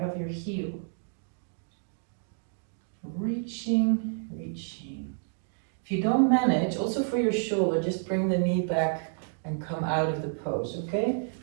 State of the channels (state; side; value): silent; left; digital silence